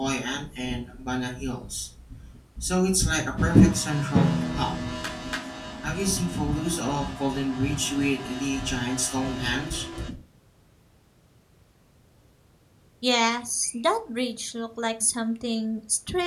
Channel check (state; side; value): identical; both; correlation 1.00